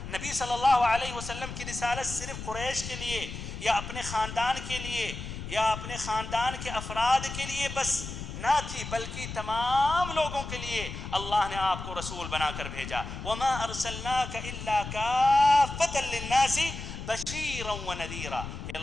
نبی صلی اللہ علیہ وسلم کی رسالت صرف قریش کے لیے یا اپنے خاندان کے لیے یا اپنے خاندان کے افراد کے لیے بس نہ تھی، بلکہ تمام لوگوں کے لیے اللہ نے آپ کو رسول بنا کر بھیجا۔ وَمَا أَرْسَلْنَاكَ إِلَّا كَافَّةً لِلنَّاسِ بَشِيرًا وَنَذِيرًا کہ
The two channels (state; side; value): noise; left; rumble, 8 dB below the sound